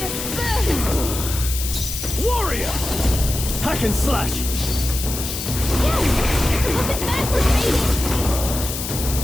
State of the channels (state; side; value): noise; left; hiss, 6 dB below the sound